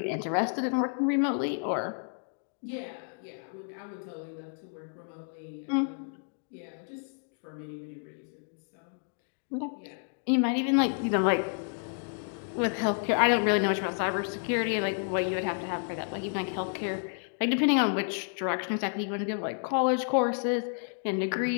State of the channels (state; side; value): silent; right; 57 dB below the other